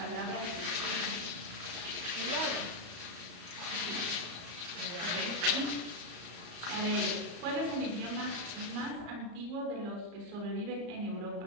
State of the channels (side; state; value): left; late; 34 ms